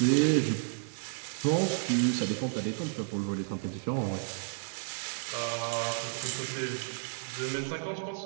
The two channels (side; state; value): left; silent; digital silence